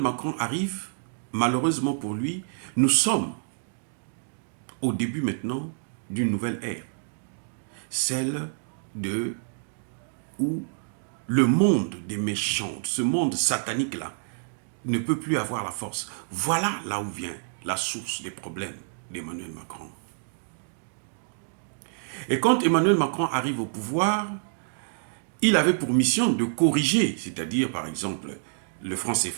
Macron arrive, malheureusement pour lui, nous sommes au début maintenant d'une nouvelle ère. Celle de où le monde des méchants, ce monde satanique-là, ne peut plus avoir la force. Voilà là où vient la source des problèmes d'Emmanuel Macron. Et quand Emmanuel Macron arrive au pouvoir, il avait pour mission de corriger, c'est-à-dire par exemple le franc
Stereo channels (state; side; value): silent; left; digital silence